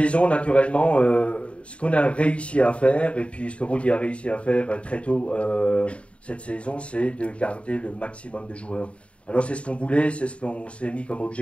naturellement, ce qu'on a réussi à faire, et puis ce que Rudi a réussi à faire très tôt cette saison, c'est de garder le maximum de joueurs. Alors c'est ce qu'on voulait, c'est ce qu'on s'est mis comme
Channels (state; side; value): late; right; 0.061 ms